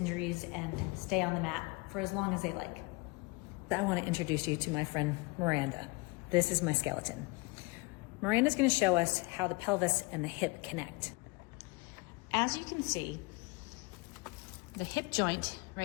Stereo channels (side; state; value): right; quieter; 26.5 dB